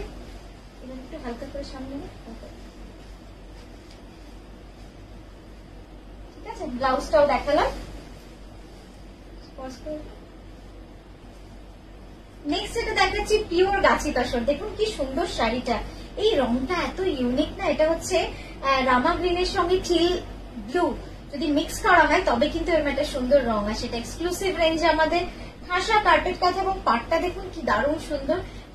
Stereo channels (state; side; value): identical; both; correlation 1.00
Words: এবার একটু হালকা করে সামনে দিয়ে, ঠিক আছে। ব্লাউজটাও দেখালাম। নেক্সট এটা দেখাচ্ছি পিওর গাছি তসর। দেখুন কি সুন্দর শাড়িটা, এই রংটা এত ইউনিক না। এটা হচ্ছে রামা গ্রিনের সঙ্গে টিল ব্লু যদি মিক্স করা হয় তবে কিন্তু এর একটা সুন্দর রং আসে। এটা এক্সক্লুসিভ রেঞ্জে আমাদের ঠাসা কার্পেট কাঁথা এবং পাটটা দেখুন কি দারুণ সুন্দর,